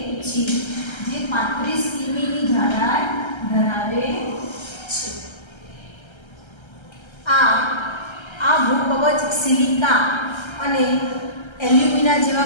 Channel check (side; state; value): right; late; 1.3 ms